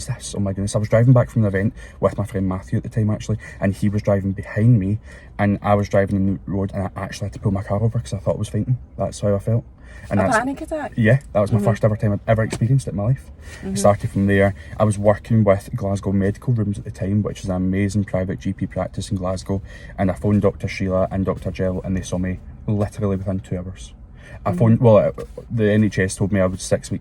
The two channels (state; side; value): identical; both; correlation 1.00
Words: this? Oh my goodness. I was driving back from an event with my friend Matthew at the time, actually, and he was driving behind me, and I was driving in the road, and I actually had to pull my car over because I thought I was fainting. That's how I felt. And a panic attack? Yeah, that was my first ever time I'd ever experienced it in my life. It started from there. I was working with Glasgow Medical Rooms at the time, which is an amazing private GP practice in Glasgow, and I phoned Dr. Sheila and Dr. Jill, and they saw me literally within 2 hours. I phoned, the NHS told me I was 6